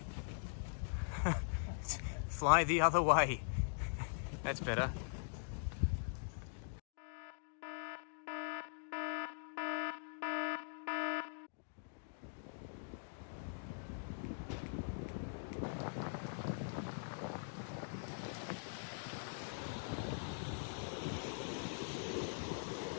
Fly the other way. That's better.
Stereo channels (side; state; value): right; silent; digital silence